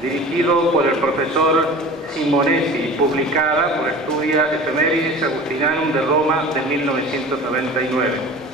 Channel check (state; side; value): normal; both; correlation 0.38